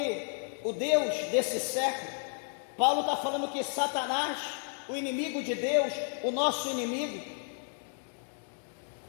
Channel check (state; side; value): silent; right; 56 dB below the other